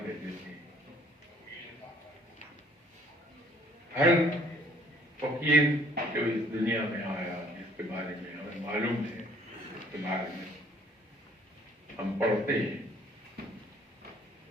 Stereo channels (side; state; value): both; normal; correlation 0.59